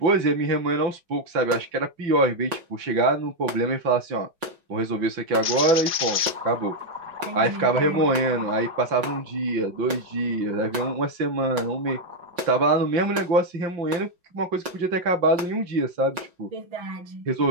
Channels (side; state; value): left; late; 5.4 ms